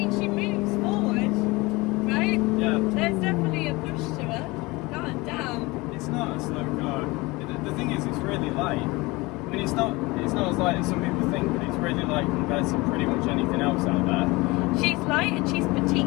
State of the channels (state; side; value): quieter; right; 22.9 dB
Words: she moves forward, right? Yeah. There's definitely a push to her. God damn. It's not. really light. I mean, it's not as light as some people think, but it's really light compared to pretty much anything else out there. She's light and she's petite.